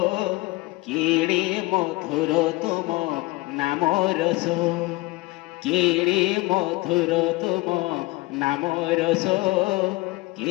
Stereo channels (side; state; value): right; quieter; 21.2 dB